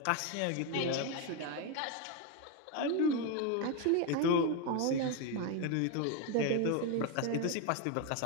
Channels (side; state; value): both; different; correlation 0.02